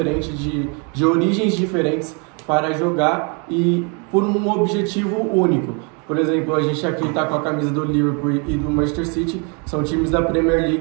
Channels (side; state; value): left; quieter; 35.0 dB